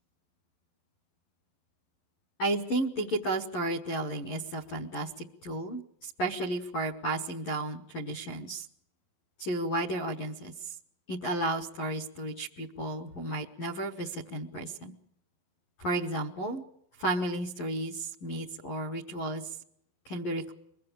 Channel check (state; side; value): late; right; 12 ms